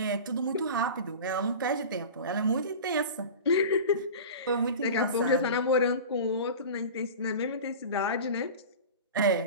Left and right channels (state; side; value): inverted; both; correlation -0.33